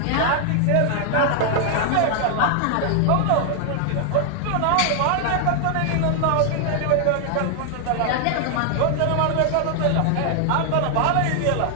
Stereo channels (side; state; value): both; different; correlation 0.00